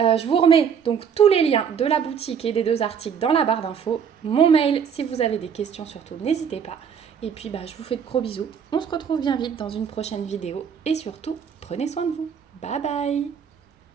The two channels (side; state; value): left; quieter; 7.4 dB